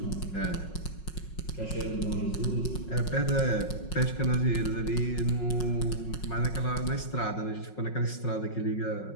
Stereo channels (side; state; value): right; late; 5.5 ms